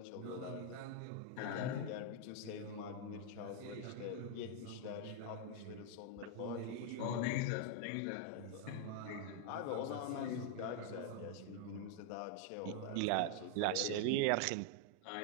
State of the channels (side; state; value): both; different; correlation 0.00